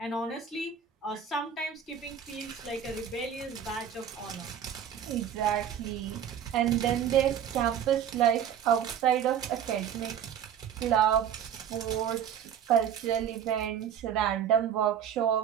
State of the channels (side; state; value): left; quieter; 8.7 dB